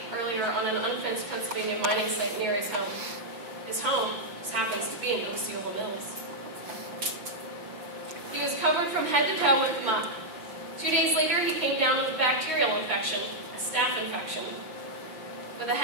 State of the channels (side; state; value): left; late; 5.8 ms